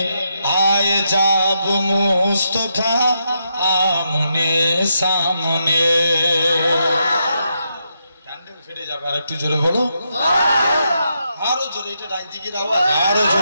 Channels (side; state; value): both; inverted; correlation -0.81